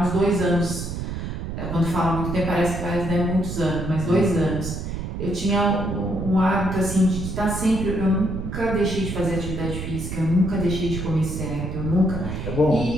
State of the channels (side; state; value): right; noise; rumble, 5 dB below the sound